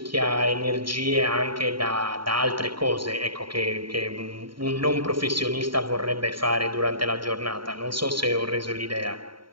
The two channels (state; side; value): late; left; 0.73 ms